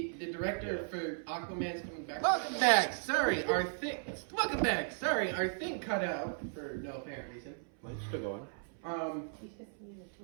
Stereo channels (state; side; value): silent; left; 54 dB below the other